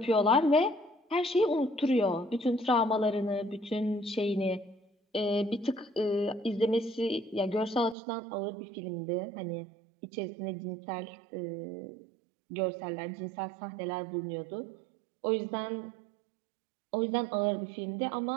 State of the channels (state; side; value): drops out; left; at 8.0 s